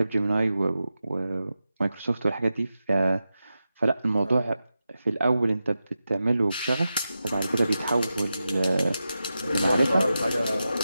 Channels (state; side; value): inverted; both; correlation -0.91